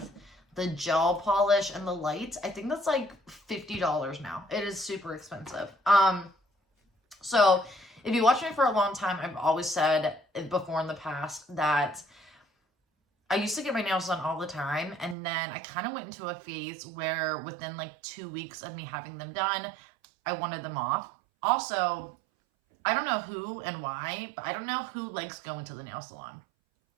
the gel polish and the lights? I think that's like $50 now. It is super expensive. So if you watch me for a long time, I've always said before in the past that I used to get my nails done all the time. And then I kind of went into a phase where within like 2 weeks of me having them done, I wanted them off. Also, I don't know who and why, but I don't know who likes going to the nail salon.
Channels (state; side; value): drops out; left; at 15.2 s